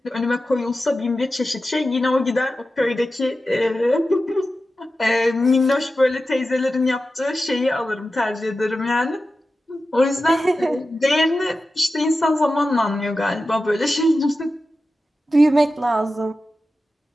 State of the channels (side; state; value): both; normal; correlation 0.93